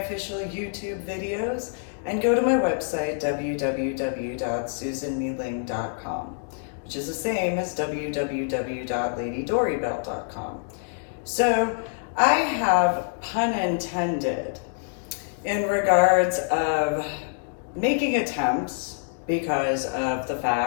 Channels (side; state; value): right; silent; digital silence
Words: YouTube videos and go to my website, www.susanmealing.com, which is the same as www.ladydorybell.com. So I have, pun intended, in regards of making attempts because of the